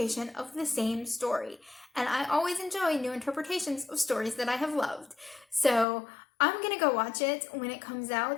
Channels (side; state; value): right; drops out; at 5.9 s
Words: of the same story. And I always enjoy new interpretations of stories that I have loved. So I'm gonna go watch it when it comes